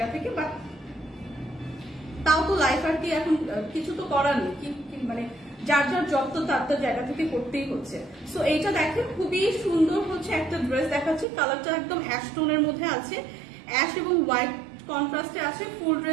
থেকে, বাট তাও তো লাইফ আর কি এখন কিছু তো করার নেই, মানে যার যার জব তো তার তার জায়গা থেকে করতেই হচ্ছে। সো এইটা দেখেন খুবই সুন্দর হচ্ছে একটা ড্রেস দেখাচ্ছি, কালারটা একদম অ্যাশ টোনের মধ্যে আছে, অ্যাশ এবং হোয়াইট কন্ট্রাস্টে আছে। ফুল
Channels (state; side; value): drops out; left; at 11.2 s